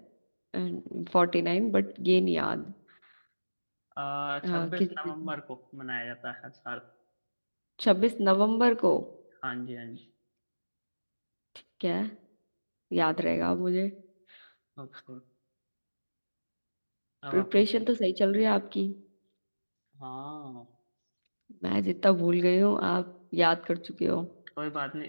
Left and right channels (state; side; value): inverted; both; correlation -1.00